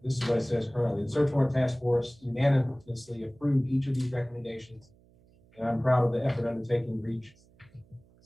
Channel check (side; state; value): right; noise; hum, 29 dB below the sound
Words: this is what it says currently, the search warrant task force unanimously approved each of these recommendations, and I'm proud of the effort undertaken to reach